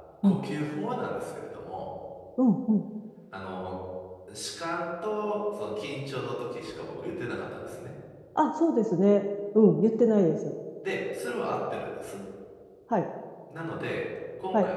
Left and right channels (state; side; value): identical; both; correlation 1.00